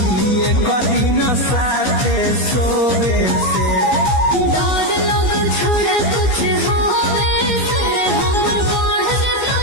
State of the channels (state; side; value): late; right; 15 ms